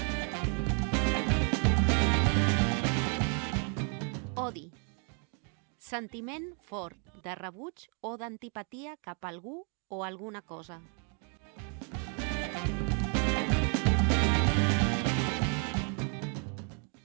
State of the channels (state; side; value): quieter; left; 38.6 dB